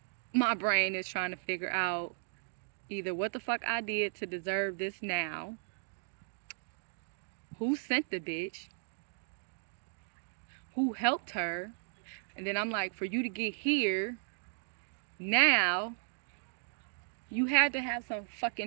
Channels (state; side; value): silent; left; digital silence